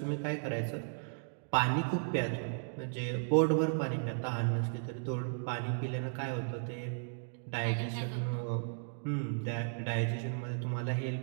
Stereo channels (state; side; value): silent; left; digital silence